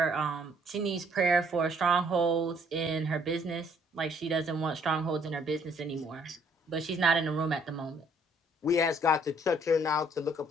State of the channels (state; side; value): normal; both; correlation 0.63